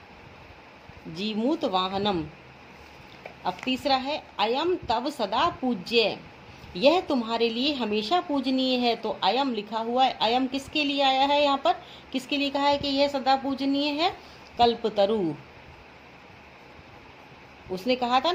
जीमूत वाहनम। अब तीसरा है अयम तव सदा पूज्य, यह तुम्हारे लिए हमेशा पूजनीय है। तो अयम लिखा हुआ है, अयम किसके लिए आया है? यहाँ पर किसके लिए कहा है कि यह सदा पूजनीय है? कल्पतरु। उसने कहा था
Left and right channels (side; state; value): both; identical; correlation 1.00